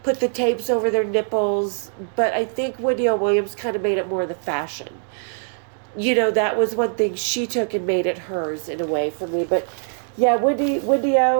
put the tapes over their nipples, but I think Wendy O. Williams kind of made it more the fashion. That was one thing she took and made it hers in a way for me. But yeah, Wendy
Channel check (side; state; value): left; silent; digital silence